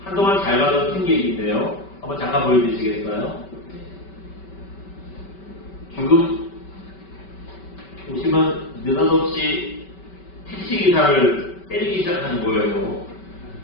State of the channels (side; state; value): right; late; 5.2 ms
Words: 한동안 잘 가던 승객인데요. 한번 잠깐 보여주시겠어요? 지금 보시면 느닷없이 택시기사를 때리기 시작하는 거예요.